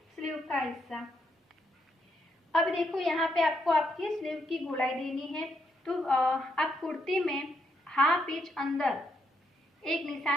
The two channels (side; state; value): both; normal; correlation 0.78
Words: स्लीव का हिस्सा। अब देखो यहाँ पे आपको आपकी स्लीव की गोलाई देनी है। तो आप कुर्ती में हाफ इंच अंदर एक